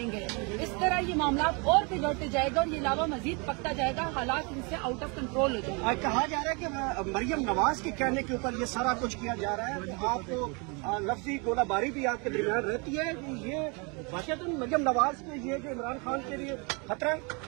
इस तरह ये मामला और बिगड़ते जाएगा और ये लावा मजीद पकता जाएगा, हालात इनसे आउट ऑफ कंट्रोल हो जाएंगे। कहा जा रहा है कि मरियम नवाज के कहने के ऊपर ये सारा कुछ किया जा रहा है, तो आपको लफ्जी गोलाबारी भी आपके दरमियान रहती है। ये वाकई मरियम नवाज के ये जो इमरान खान के लिए खतरा है।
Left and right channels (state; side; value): quieter; left; 31.5 dB